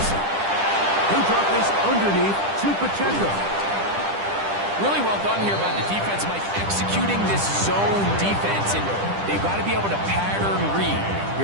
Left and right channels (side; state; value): left; late; 10 ms